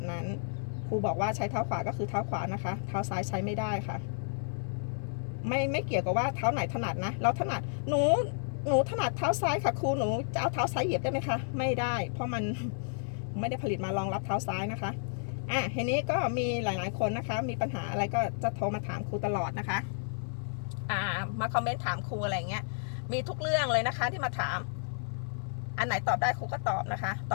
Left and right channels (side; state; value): right; silent; digital silence